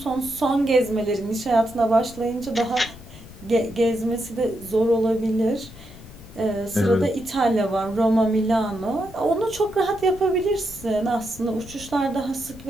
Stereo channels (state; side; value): noise; left; rumble, 18 dB below the sound